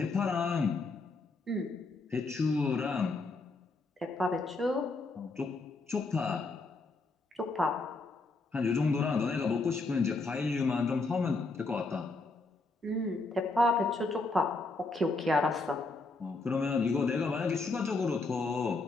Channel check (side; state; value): right; quieter; 3.5 dB